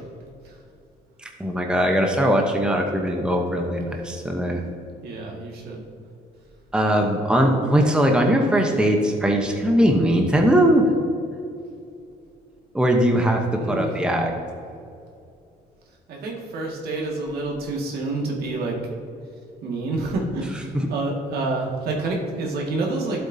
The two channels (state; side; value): normal; both; correlation 0.68